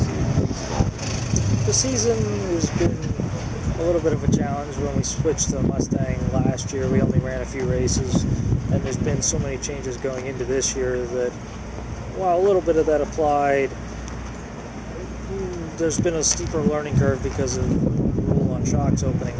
things evolving? The season has been a little bit of a challenge. When we switched to Mustang last year, we only ran a few races, and there's been so many changes going into this year that while a little bit of that applied, there's been a steeper learning curve because of the rule on shocks opening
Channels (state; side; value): identical; both; correlation 1.00